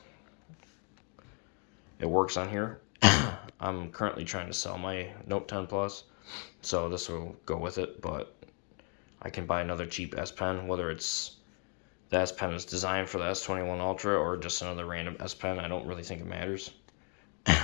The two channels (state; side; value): quieter; right; 39.3 dB